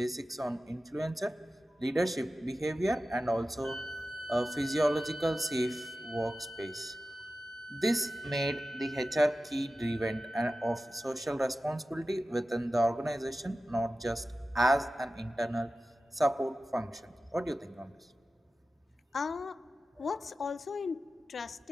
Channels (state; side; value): normal; both; correlation 0.94